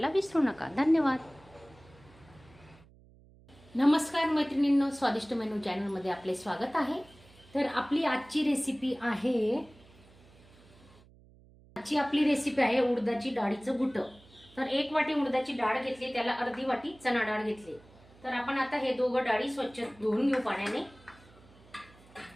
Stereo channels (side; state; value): right; noise; hum, 25 dB below the sound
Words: विसरू नका. धन्यवाद. नमस्कार मैत्रिणींनो, स्वादिष्ट मेनू चॅनलमध्ये आपले स्वागत आहे. तर आपली आजची रेसिपी आहे उडदाची डाळीचं घुटं. तर 1 वाटी उडदाची डाळ घेतली, त्याला अर्धी वाटी चणा डाळ घेतली. तर आपण आता हे दोघं डाळी स्वच्छ धुवून घेऊ पाण्याने.